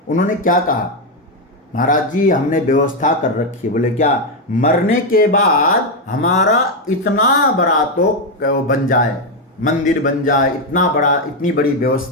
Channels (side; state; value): both; normal; correlation 0.05